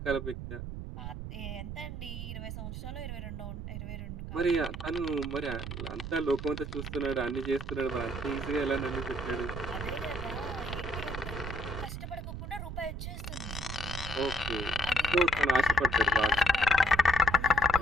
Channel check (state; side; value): noise; right; rumble, 7 dB below the sound